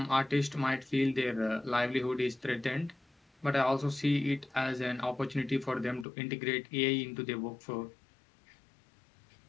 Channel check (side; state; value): right; drops out; at 6.1 s